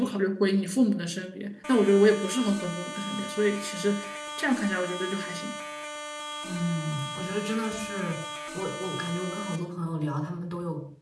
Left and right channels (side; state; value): both; identical; correlation 1.00